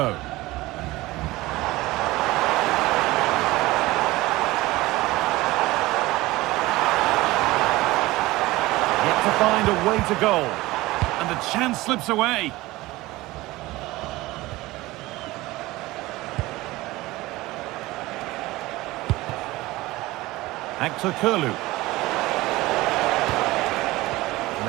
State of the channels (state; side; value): quieter; left; 19.2 dB